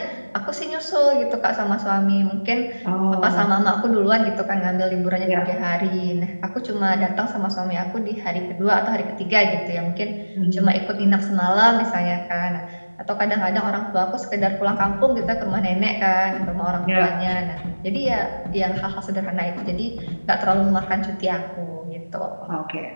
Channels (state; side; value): inverted; both; correlation -1.00